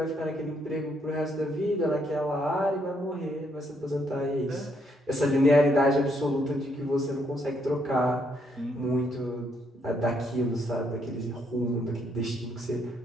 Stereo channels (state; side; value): normal; both; correlation 0.73